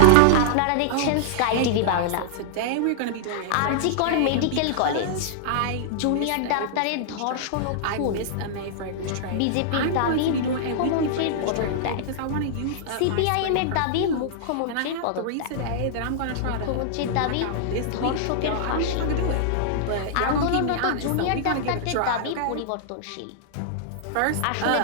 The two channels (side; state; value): both; different; correlation -0.01